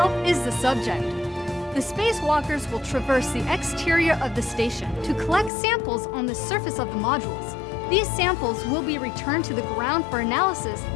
is the subject. The spacewalkers will traverse the exterior of the station to collect samples on the surface of the modules. These samples will be returned to the ground for analysis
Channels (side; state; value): right; drops out; at 5.5 s